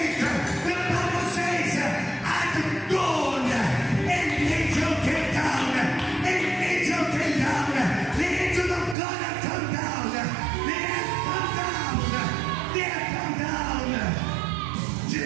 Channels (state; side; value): drops out; left; at 9.0 s